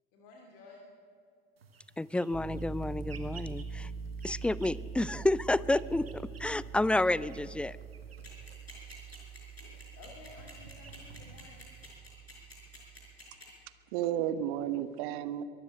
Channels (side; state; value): both; normal; correlation 0.78